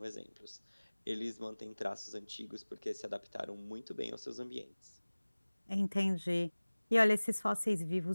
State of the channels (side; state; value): both; inverted; correlation -1.00